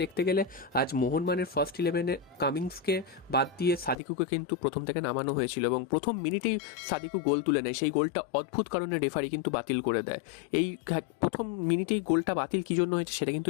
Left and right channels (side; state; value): right; drops out; at 4.0 s